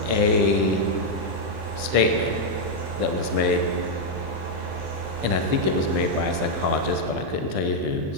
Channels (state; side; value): late; left; 15 ms